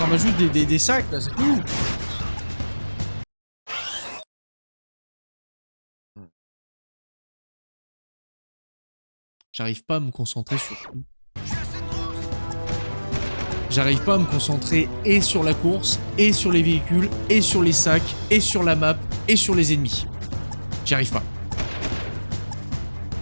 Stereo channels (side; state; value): both; inverted; correlation -1.00